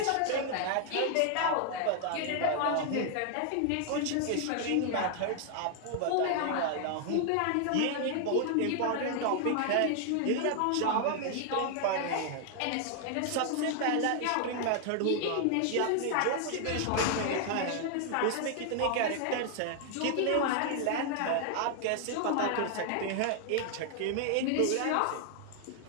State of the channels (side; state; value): both; different; correlation 0.00